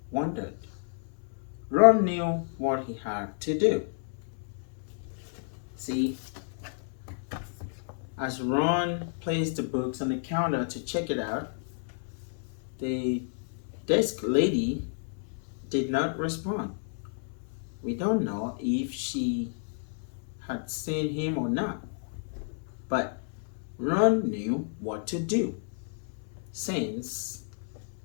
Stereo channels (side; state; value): right; silent; 57 dB below the other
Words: wondered. Ron knew what he had to do. See, as Ron placed the books on the counter to check it out, the desk lady did not respond. We don't know if she had seen him or not, but Ron knew what to do since